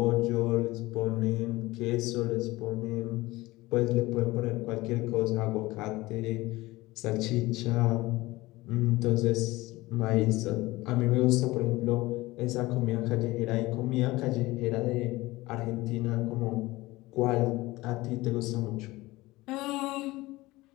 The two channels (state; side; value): quieter; right; 19.8 dB